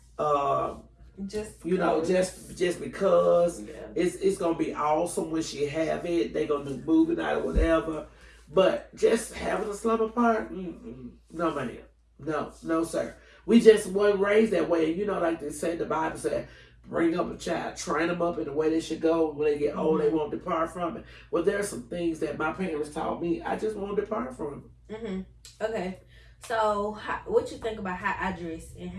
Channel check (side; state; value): both; identical; correlation 1.00